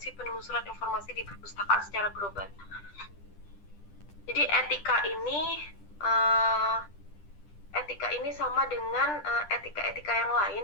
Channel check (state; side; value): late; right; 10 ms